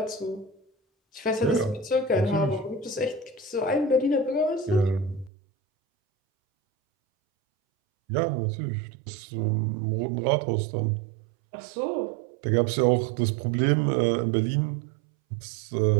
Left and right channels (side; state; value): left; drops out; at 5.3 s